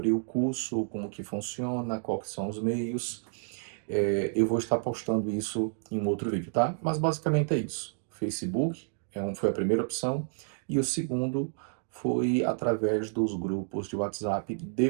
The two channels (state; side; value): silent; left; digital silence